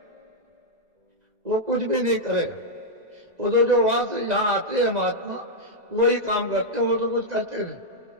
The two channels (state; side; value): late; left; 2.0 ms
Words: वो कुछ भी नहीं करेगा। वो तो जो वहां से यहाँ आते हैं महात्मा, वही काम करते हैं, वो तो कुछ करते नहीं,